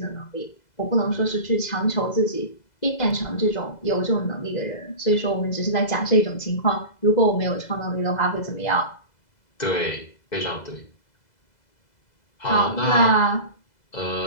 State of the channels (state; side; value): late; right; 2.0 ms